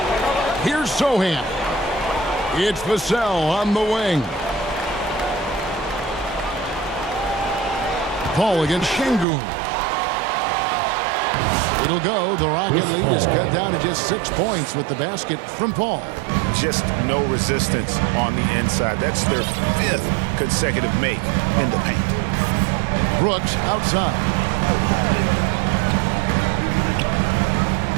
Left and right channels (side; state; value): left; drops out; at 9.2 s